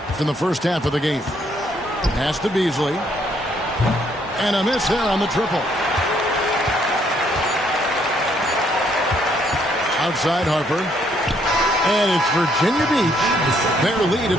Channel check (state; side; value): normal; both; correlation 0.69